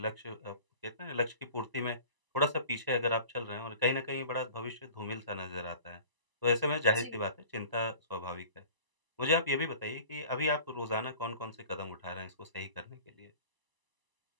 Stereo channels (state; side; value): late; left; 1.0 ms